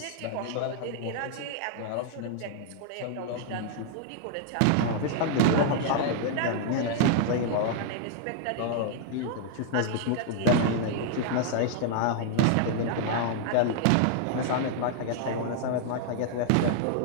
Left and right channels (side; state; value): both; different; correlation -0.01